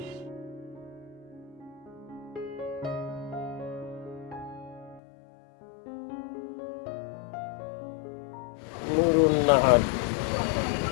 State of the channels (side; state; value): right; drops out; at 5.0 s